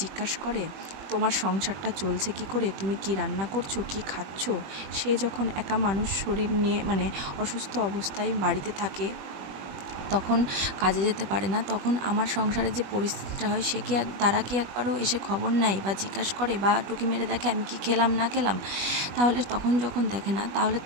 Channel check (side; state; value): left; late; 20 ms